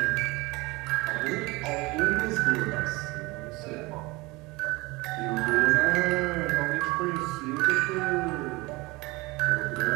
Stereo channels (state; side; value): quieter; left; 23.1 dB